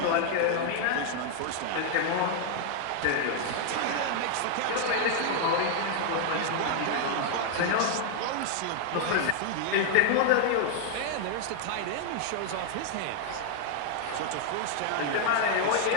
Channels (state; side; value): different; both; correlation 0.00